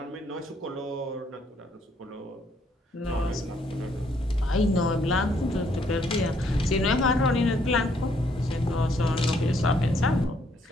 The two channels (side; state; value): both; normal; correlation 0.69